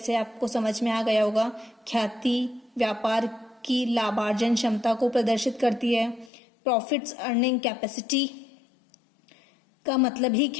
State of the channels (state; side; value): drops out; right; at 6.3 s